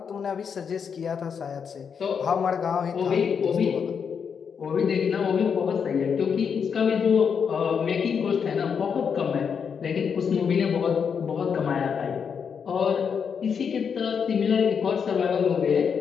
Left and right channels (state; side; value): quieter; right; 6.7 dB